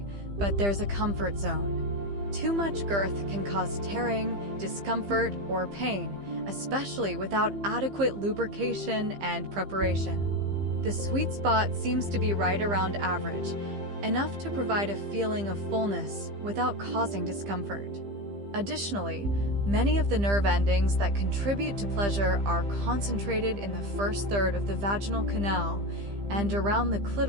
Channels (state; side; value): late; left; 15 ms